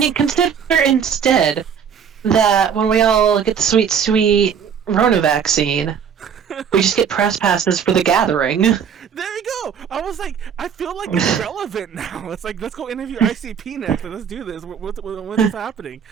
consider instead that when we all get the sweet, sweet Rona vaccine, we just get press passes for the gathering. There you go. I was like, I feel like it's relevant now. It's like, let's go interview ICP next. Let's do this. What is happening?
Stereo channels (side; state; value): left; quieter; 7.5 dB